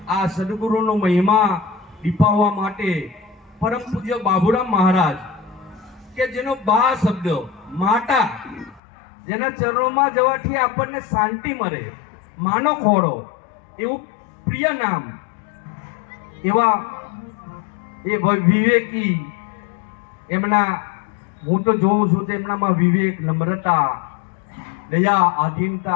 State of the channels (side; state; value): right; drops out; at 8.8 s